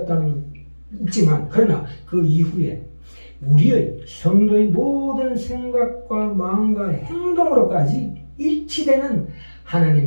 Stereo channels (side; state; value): both; inverted; correlation -1.00